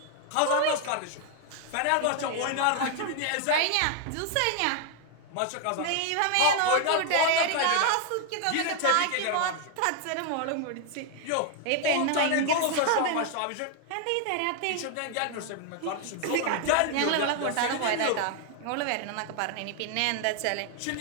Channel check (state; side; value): different; both; correlation 0.00